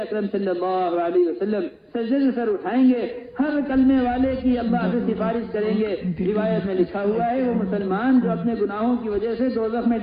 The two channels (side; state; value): both; identical; correlation 1.00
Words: اکرم صلی اللہ علیہ وسلم سجدے سے سر اٹھائیں گے، ہر کلمے والے کی اللہ سے سفارش کریں گے۔ روایت میں لکھا ہوا ہے وہ مسلمان جو اپنے گناہوں کی وجہ سے دوزخ میں